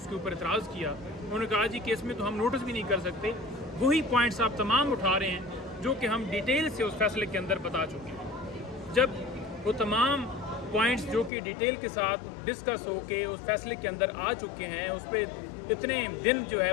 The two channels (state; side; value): drops out; right; at 11.3 s